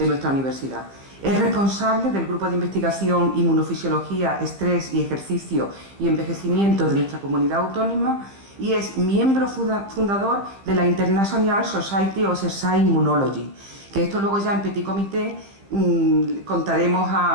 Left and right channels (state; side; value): late; left; 15 ms